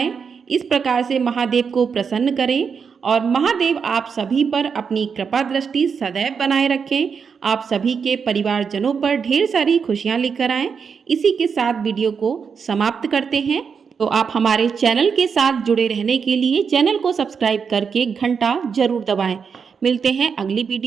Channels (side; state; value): left; quieter; 6.2 dB